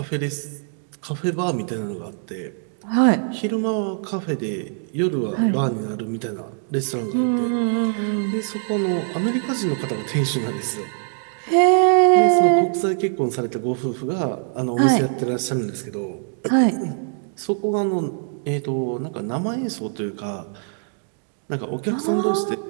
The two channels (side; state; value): left; silent; digital silence